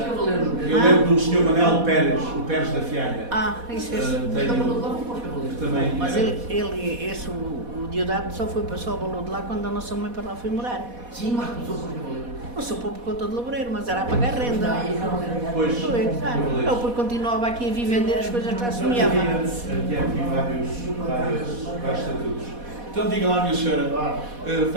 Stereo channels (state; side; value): late; left; 4.1 ms